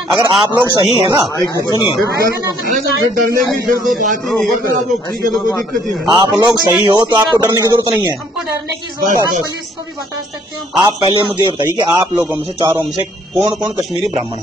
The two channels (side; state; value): both; normal; correlation 0.63